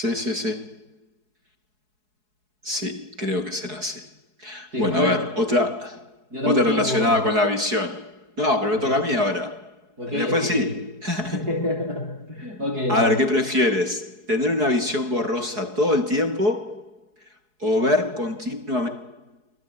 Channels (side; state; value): left; late; 4.7 ms